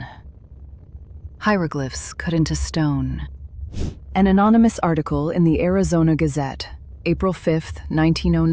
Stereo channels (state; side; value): identical; both; correlation 1.00